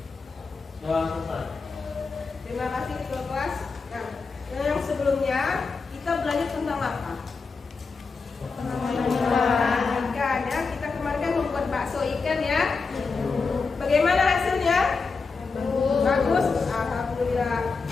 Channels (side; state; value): right; quieter; 4.6 dB